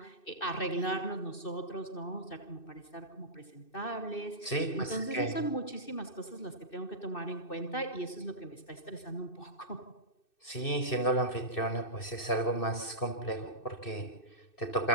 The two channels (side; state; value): right; late; 2.6 ms